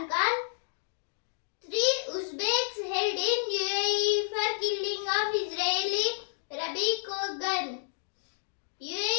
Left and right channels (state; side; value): silent; right; digital silence